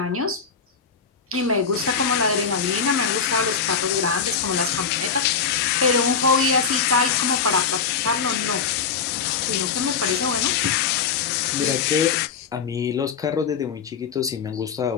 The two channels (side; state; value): right; quieter; 6.1 dB